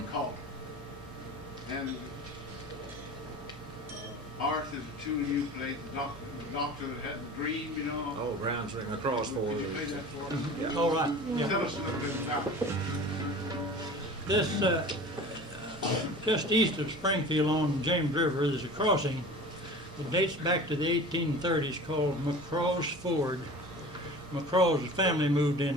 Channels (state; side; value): normal; both; correlation 0.39